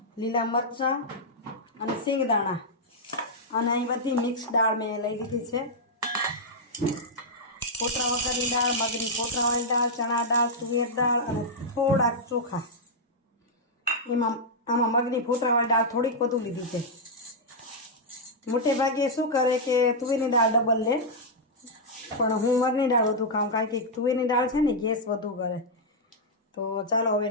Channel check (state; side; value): normal; both; correlation -0.05